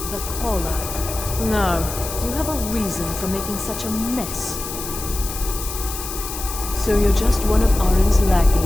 the Caller. Now, do you have a reason for making such a mess? So you're just one of Arin's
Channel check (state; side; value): noise; left; hiss, 8 dB below the sound